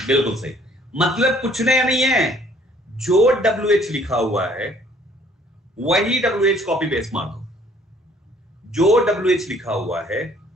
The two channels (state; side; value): normal; both; correlation 0.59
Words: बिल्कुल सही। मतलब कुछ नया नहीं है, जो WH लिखा हुआ है वही WH कॉपी पेस्ट मार दो, जो WH लिखा हुआ है